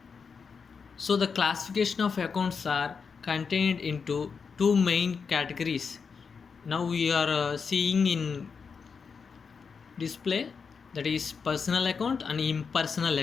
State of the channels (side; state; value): right; quieter; 5.7 dB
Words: So the classification of accounts are contained into two main categories. Now we are seeing in display, that is personal account and impersonal